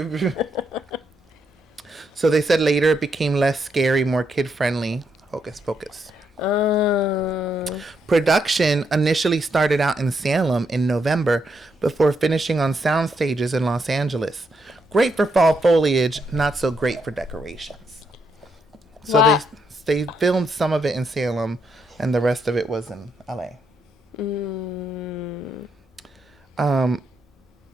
So they said later it became less scary, more kid-friendly. Hocus Pocus. Production initially started out in Salem in November before finishing on sound stages in Los Angeles. Great for fall foliage, not so great for decorations. So Wow. they filmed some of it in Salem and the rest of it was in LA. One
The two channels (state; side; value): normal; both; correlation 0.78